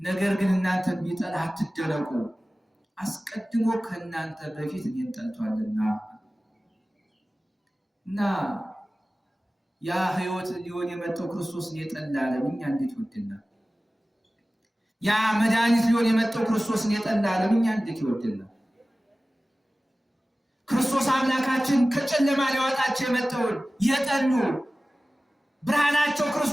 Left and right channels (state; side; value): normal; both; correlation 0.97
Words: ግን እናንተን ቢጠላ አትደነቁ፣ አስቀድሞ ከእናንተ በፊት እኔን ጠልቷልና። እና ያ ህይወት ሊሆን የመጣው ክርስቶስን የጠላ ዓለም እኛ እንዴት ይወደናል? ያ መድኃኒት ሊሆን የመጣው ክርስቶስን የጠላ ዓለም እኛ እንዴት ይወደናል? ክርስቶስ አምላካችን ከጨለማ ሊያወጣቸው የመጣውን የጠሉ ብርሃናቸው